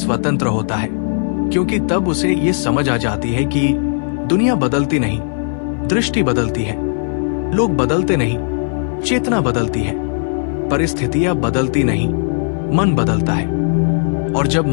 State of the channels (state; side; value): silent; right; 61 dB below the other